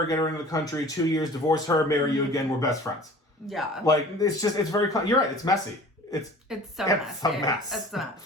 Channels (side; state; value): both; normal; correlation 0.44